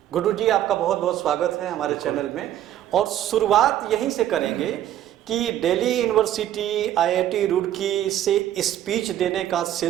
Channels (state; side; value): quieter; left; 11.9 dB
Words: गुड्डू जी, आपका बहुत बहुत स्वागत है हमारे चैनल में। और शुरुआत यहीं से करेंगे कि दिल्ली यूनिवर्सिटी, आईआईटी रुड़की से स्पीच देने का